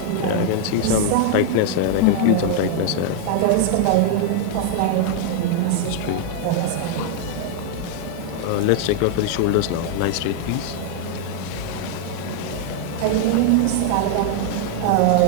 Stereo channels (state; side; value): different; both; correlation 0.00